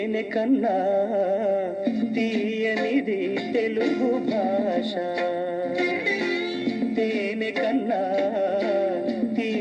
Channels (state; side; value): identical; both; correlation 1.00